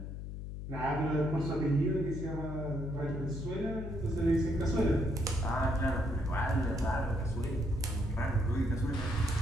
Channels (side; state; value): left; noise; hum, 7 dB below the sound